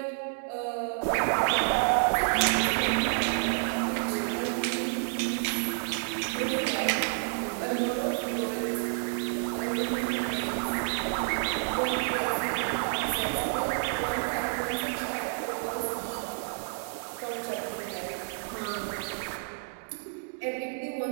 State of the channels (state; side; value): silent; left; digital silence